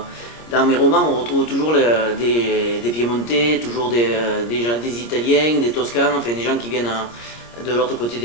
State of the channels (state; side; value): late; right; 25 ms